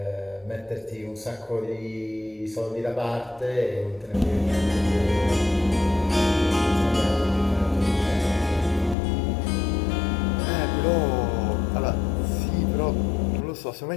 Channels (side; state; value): right; drops out; at 9.0 s